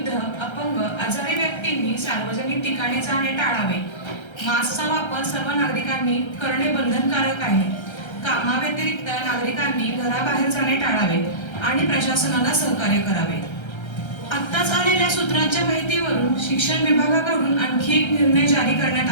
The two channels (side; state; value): right; late; 1.3 ms